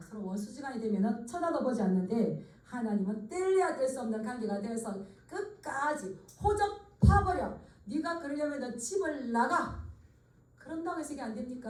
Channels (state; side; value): identical; both; correlation 1.00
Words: 서로 원수지간이 되면 쳐다도 보지 않는데 하나님은 뗄래야 뗄 수 없는 관계가 되어서 끝까지 호적 파버려. 네가 그러려면 집을 나가. 그런다고 해서 이게 안